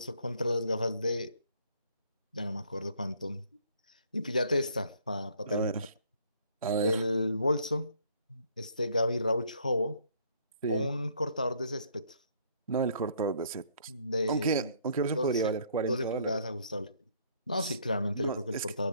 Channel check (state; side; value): inverted; both; correlation -0.62